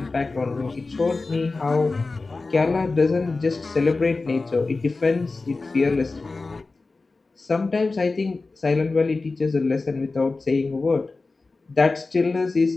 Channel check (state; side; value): quieter; right; 3.7 dB